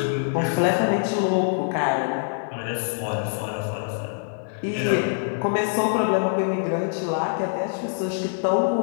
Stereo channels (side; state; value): right; silent; 62 dB below the other